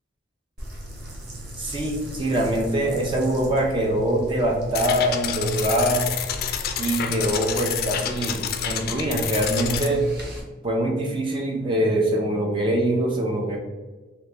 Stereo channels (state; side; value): normal; both; correlation 0.41